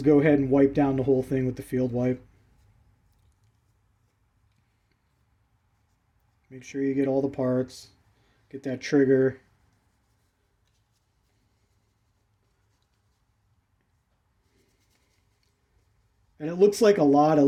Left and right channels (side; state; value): both; identical; correlation 1.00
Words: go ahead and wipe down the whole thing with the field wipe. Make sure you get all the parts. Get that trigger. And it looks like a lot. It